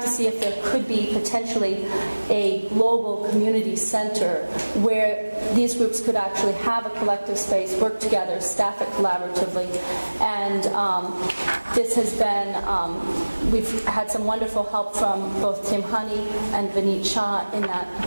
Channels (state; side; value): inverted; both; correlation -1.00